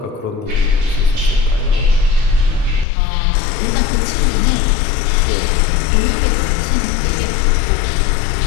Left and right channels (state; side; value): drops out; right; at 2.9 s